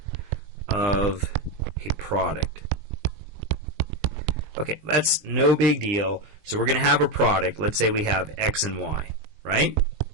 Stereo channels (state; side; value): late; left; 20 ms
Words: of a product. Okay, that's no big deal. So we're going to have a product. Let's say we have x and y, right?